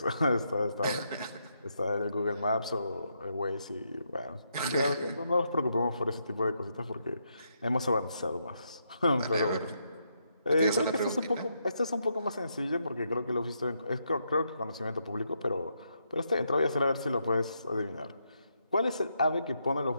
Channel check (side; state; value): both; inverted; correlation -0.79